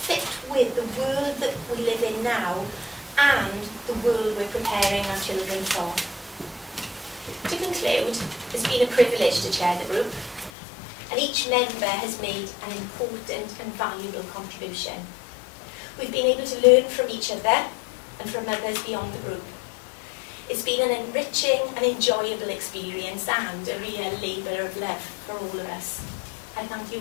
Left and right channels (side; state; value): right; drops out; at 10.5 s